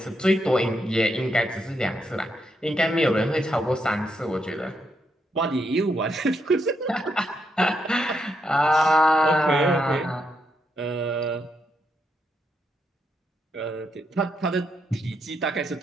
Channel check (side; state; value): both; normal; correlation 0.80